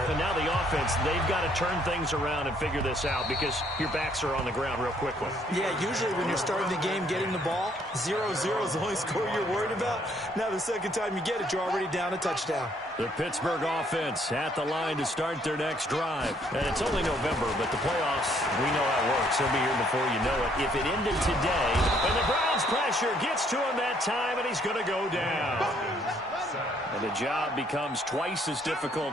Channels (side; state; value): both; normal; correlation 0.66